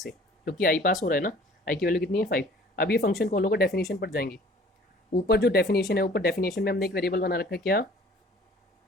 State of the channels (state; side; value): normal; both; correlation 0.51